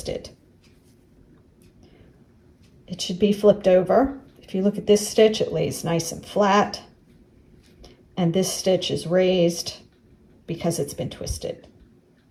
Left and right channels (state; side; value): identical; both; correlation 1.00